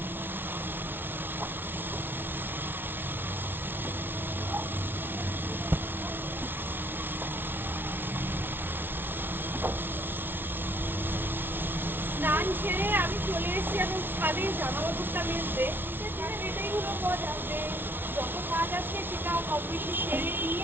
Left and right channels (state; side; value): late; left; 0.10 ms